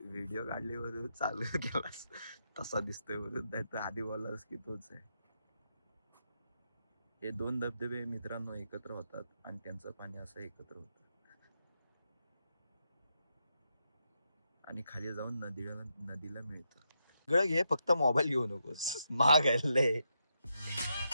व्हिडिओ काढली वरून चालू केलास तसा दिसतोय वरून नाही तर आधी बोललास की तोच आहे. हे दोन धबधबे मित्रांनो एकत्र होतात आणि त्यांचं पाणी असं एकत्र होतं आणि खाली जाऊन नदीला मिळतं. सगळं घे फक्त मोबाईल घेऊ नकोस महाग आहे.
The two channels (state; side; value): inverted; both; correlation -0.83